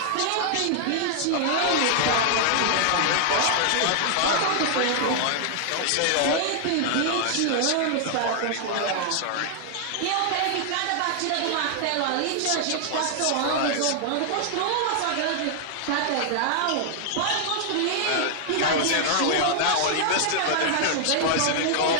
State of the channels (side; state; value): both; different; correlation 0.00